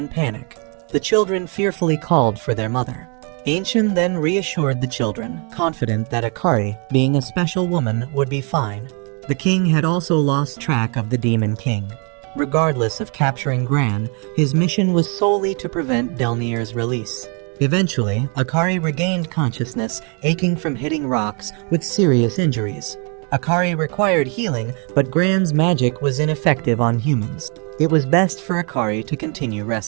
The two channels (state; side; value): quieter; left; 36.1 dB